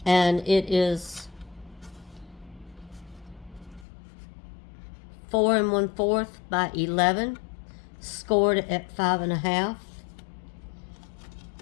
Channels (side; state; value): right; drops out; at 3.9 s